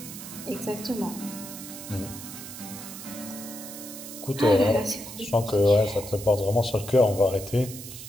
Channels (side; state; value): right; noise; hiss, 12 dB below the sound